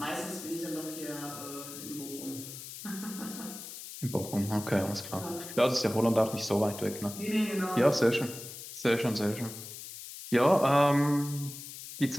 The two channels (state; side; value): noise; left; hiss, 11 dB below the sound